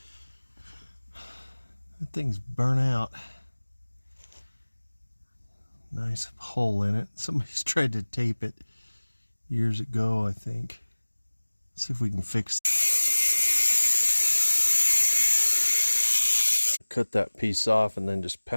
that thing's burnt out. Nice hole in it. Somebody's tried to tape it years ago, I think. See if we can fix it. Cut that piece off and then just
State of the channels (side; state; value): both; inverted; correlation -1.00